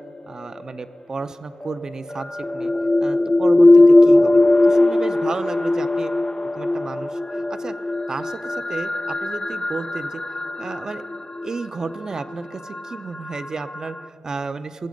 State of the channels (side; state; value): both; normal; correlation 0.98